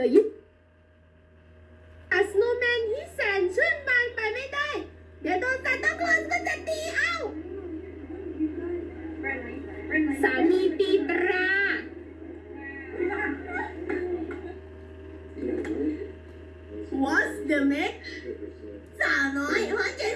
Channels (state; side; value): identical; both; correlation 1.00